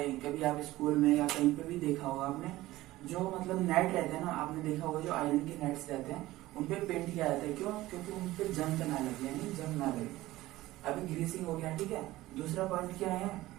कभी आप स्कूल में या कहीं पे भी देखा होगा आपने, जो मतलब नेट रहते हैं ना, आपने देखा होगा जो आयरन के नेट्स रहते हैं उन पे पेंट किया जाता है, क्यों, क्योंकि उन पे जंग ना लगे, यानी जंग ना लगे। अभी ग्रीसिंग हो गया, ठीक है। दूसरा पॉइंट क्या है,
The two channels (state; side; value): quieter; left; 17.1 dB